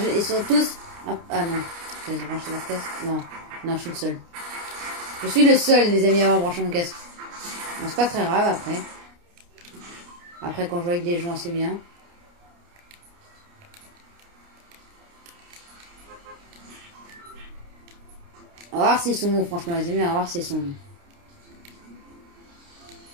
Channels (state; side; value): late; left; 29 ms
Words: Ils sont tous... Ah non. Ils ont branché leur casque. Non, je suis le seul. Je suis le seul, les amis, à avoir branché mon casque. Bon, c'est pas très grave après. Après, quand je joue avec des gens, c'est bien. On va voir s'ils sont bons, franchement, les amis. On va voir s'ils sont bons.